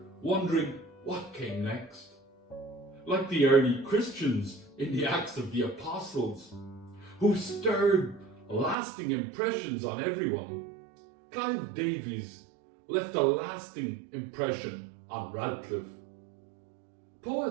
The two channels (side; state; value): left; drops out; at 8.8 s